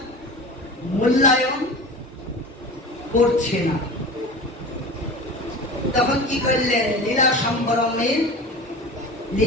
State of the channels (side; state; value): both; normal; correlation 0.34